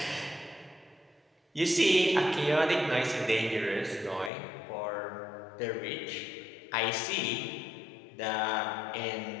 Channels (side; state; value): right; drops out; at 4.3 s